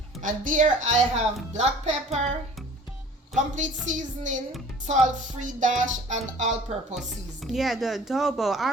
And there I have black pepper, complete seasoning, salt-free dash, and all-purpose seasoning. Yeah, the adobo.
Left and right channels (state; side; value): normal; both; correlation 0.47